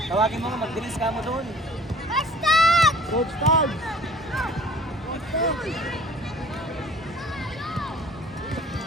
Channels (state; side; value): normal; both; correlation 0.51